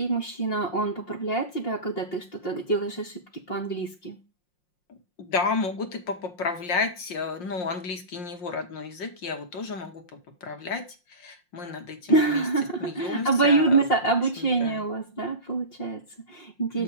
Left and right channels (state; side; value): late; right; 5.6 ms